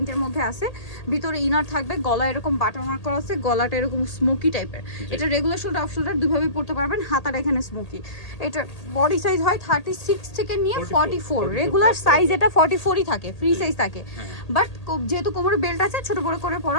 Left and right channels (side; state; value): right; late; 1.8 ms